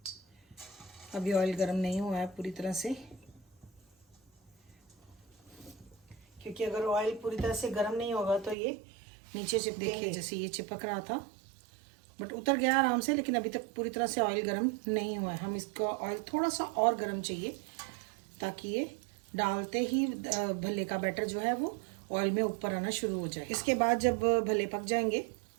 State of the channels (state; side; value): drops out; left; at 8.6 s